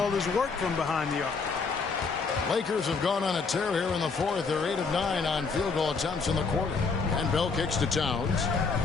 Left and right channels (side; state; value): right; quieter; 4.7 dB